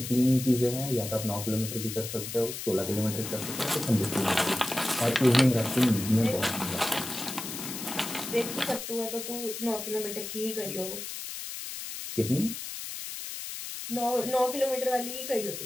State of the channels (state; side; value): noise; left; hiss, 7 dB below the sound